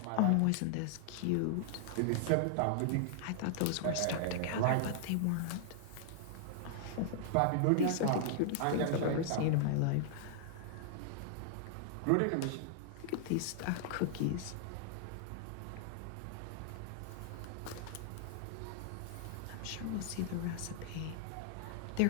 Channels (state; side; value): different; both; correlation -0.01